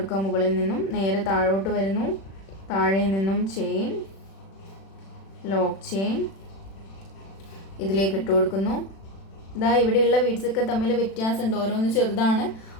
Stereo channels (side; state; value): right; late; 36 ms